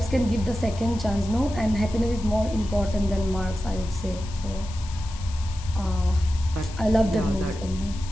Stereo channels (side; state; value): left; noise; hiss, 17 dB below the sound